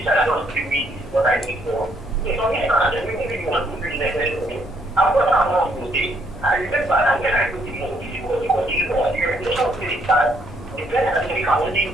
child, not giving me what I need for. It's not that we really want to bring them to me. I've got that one to say. I remember that when I took the movie, because you know, the orientation city that the parents can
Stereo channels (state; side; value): normal; both; correlation 0.70